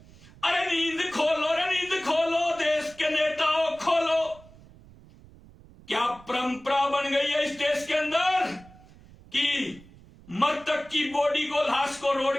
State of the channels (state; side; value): noise; right; rumble, 23 dB below the sound